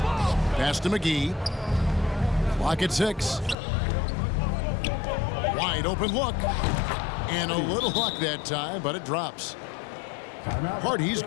Pass to McGee. Clock at 6. Wide open look. And a little luck that time, but it drops. Hardy's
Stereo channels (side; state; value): right; drops out; at 3.6 s